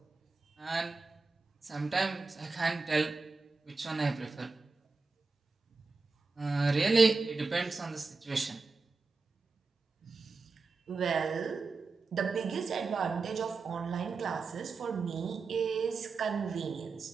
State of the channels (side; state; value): left; quieter; 4.2 dB